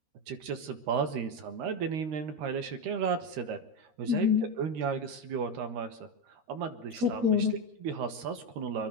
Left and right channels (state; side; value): late; left; 13 ms